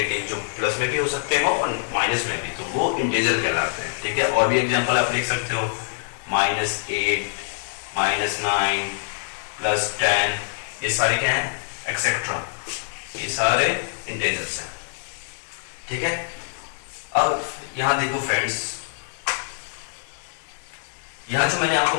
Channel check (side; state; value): right; silent; digital silence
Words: जो प्लस में भी हो सकते हो और माइनस में भी, तो वो इंटीजर कहलाते हैं, ठीक है। और भी एग्जांपल आप देख सकते हो, -8, -9, +10, ये सारे क्या है, एक्सेट्रा, ये सारे इंटीजर्स हैं, ठीक है। अब यहां देखो फ्रेंड्स, यहां जो मैंने